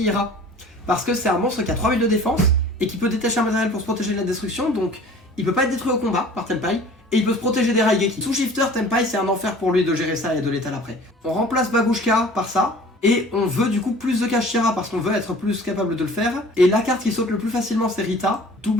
parce que c'est un monstre qui a 3000 de défense et qui peut détacher un matériel pour se protéger de la destruction, donc il peut pas être détruit au combat par Tenpai. Et il peut se protéger des Raigeki. Sous shifter, Tenpai c'est un enfer pour lui de gérer ça et de l'étaler après. On remplace Bagushka par ça. Et on veut du coup plus de Kashira parce qu'on veut être plus capable de le faire. Et la carte qui saute le plus facilement c'est Rita.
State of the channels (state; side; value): normal; both; correlation 0.46